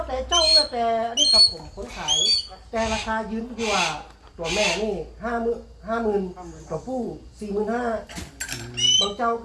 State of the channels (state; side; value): identical; both; correlation 1.00